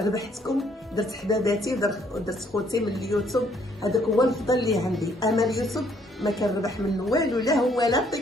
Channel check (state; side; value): normal; both; correlation 0.66